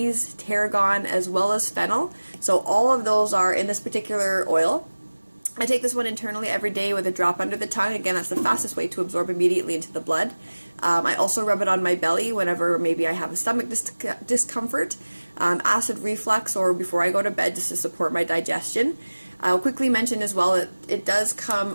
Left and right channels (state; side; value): inverted; both; correlation -1.00